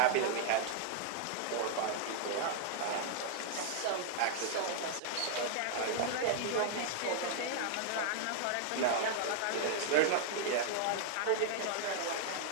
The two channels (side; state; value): both; different; correlation -0.01